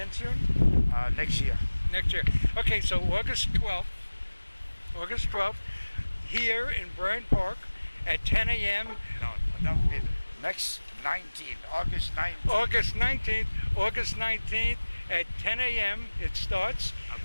soon? Next year. Next year. Okay, so August 12th, here in Bryant Park at 10 a.m. No, that would be next 19th, August 19th. August 19th at 10 a.m. It starts. At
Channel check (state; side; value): inverted; both; correlation -1.00